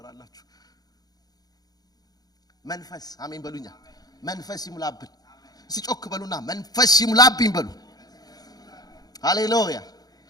መንፈስ አሜን በሉኛ። መንፈስ ይሙላብን። ሲጮክ በሉና መንፈስ ይሙላብኝ በሉ። ሃሌሉያ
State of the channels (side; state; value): right; late; 0.19 ms